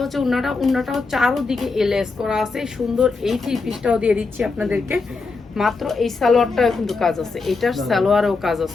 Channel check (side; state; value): right; quieter; 4.1 dB